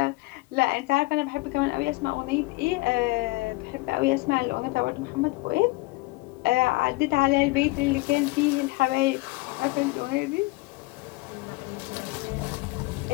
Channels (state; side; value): quieter; right; 23.3 dB